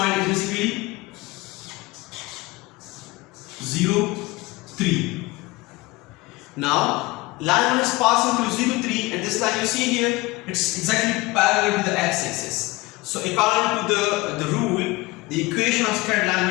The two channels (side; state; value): right; quieter; 22.1 dB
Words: is basically 0, 3. Now line 1 is passing through 0, 3, and this line you see here, it's exactly parallel to the x-axis. So according to the rule, the equation of straight